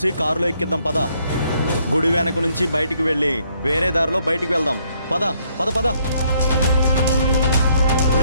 కారులో ఎక్కిద్దాం పద. గుడి వెనక నుంచి బయటికి వెళ్ళి వేరే దారిలో బయటికి వెళ్దాం. పద పద పద.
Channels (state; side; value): inverted; both; correlation -0.69